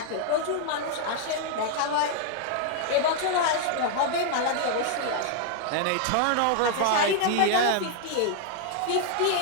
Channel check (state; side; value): different; both; correlation 0.00